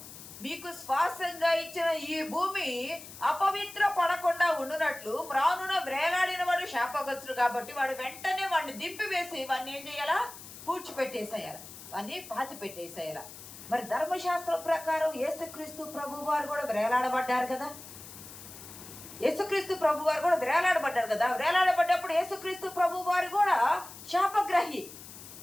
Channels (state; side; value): noise; left; hiss, 15 dB below the sound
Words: మీకు స్వాస్థ్యంగా ఇచ్చిన ఈ భూమి అపవిత్ర పడకుండా ఉండునట్లు మ్రానున వ్రేలాడిన వాడు శాపగ్రస్తుడు కాబట్టి వాడు వెంటనే వాడిని దింపివేసి వాడిని ఏం చేయాలా? పూడ్చిపెట్టేసేయాలి, వాడిని పాతి పెట్టేసేయాలి. మరి ధర్మశాస్త్రం ప్రకారం యేసుక్రీస్తు ప్రభు వారు కూడా వ్రేలాడబడ్డారు కదా. యేసుక్రీస్తు ప్రభు వారు కూడా వ్రేలాడబడ్డారు కదా. వ్రేలాడబడ్డప్పుడు యేసుక్రీస్తు ప్రభు వారు కూడా శాపగ్రహి,